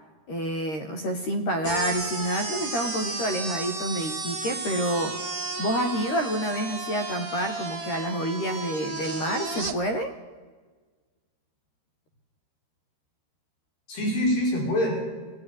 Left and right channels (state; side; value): late; right; 13 ms